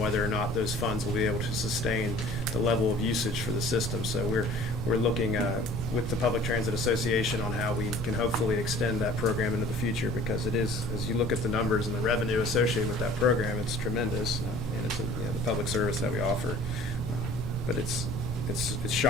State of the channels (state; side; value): normal; both; correlation 0.48